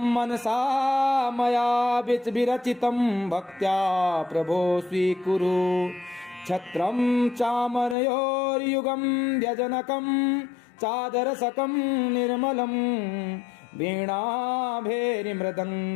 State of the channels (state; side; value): drops out; right; at 8.0 s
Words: मनसा मया विरचितं भक्त्या प्रभो स्वीकुरु छत्रं चामरयोर्युगं व्यजनकं चादरसकं निर्मलं